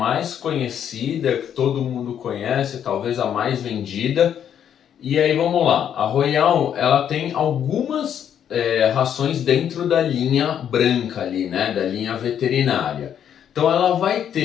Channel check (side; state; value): right; quieter; 9.2 dB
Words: conhecida, que todo mundo conhece, talvez a mais vendida. E aí vamos lá, a Royal, ela tem algumas rações dentro da linha branca ali, né, da linha veterinária. Então ela vai